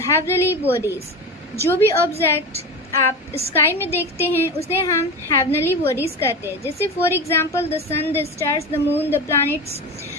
heavenly bodies. जो भी ऑब्जेक्ट आप स्काई में देखते हैं उसे हम heavenly bodies कहते हैं। जैसे for example the sun, the stars, the moon, the planets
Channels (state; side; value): normal; both; correlation 0.25